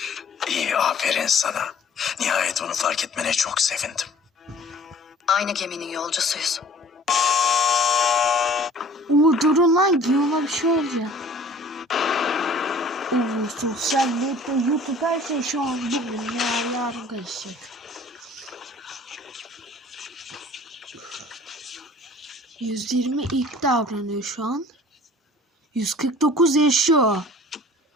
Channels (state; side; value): normal; both; correlation 0.50